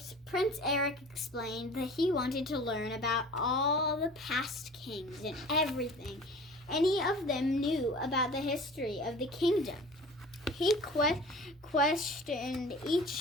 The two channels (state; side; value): normal; both; correlation 0.43